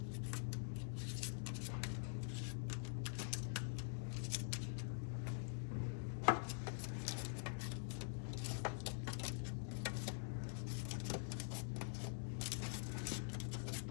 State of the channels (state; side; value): silent; right; digital silence